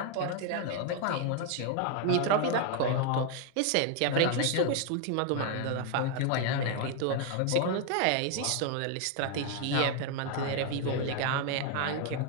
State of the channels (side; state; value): both; different; correlation 0.01